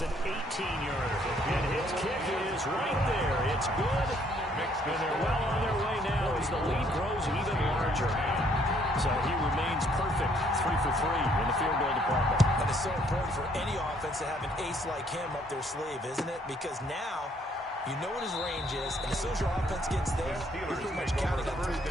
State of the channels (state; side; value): normal; both; correlation 0.66